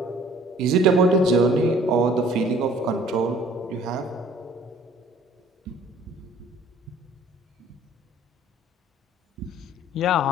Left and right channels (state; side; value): normal; both; correlation 0.54